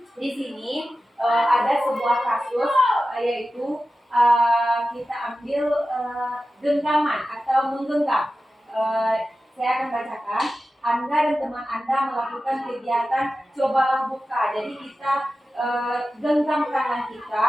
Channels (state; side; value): normal; both; correlation 0.94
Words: di sini ada sebuah kasus yaitu kita ambil genggaman atau menggenggam. Saya akan bacakan. Anda dan teman Anda melakukan kegiatan cobalah buka. Jadi kita genggam tangan kita